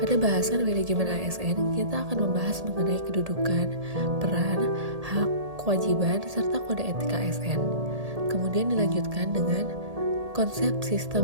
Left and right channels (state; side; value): late; left; 1.8 ms